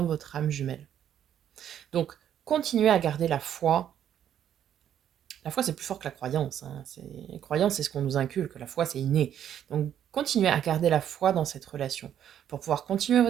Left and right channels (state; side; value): quieter; left; 10.0 dB